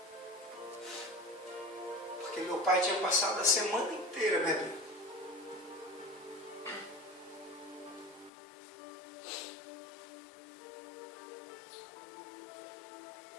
Porque meu pai tinha passado a semana inteira bebendo.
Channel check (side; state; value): right; drops out; at 8.3 s